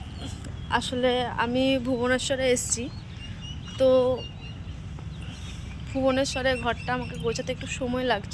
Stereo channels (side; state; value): both; identical; correlation 1.00